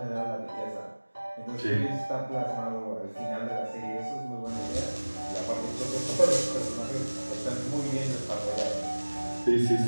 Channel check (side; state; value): both; inverted; correlation -1.00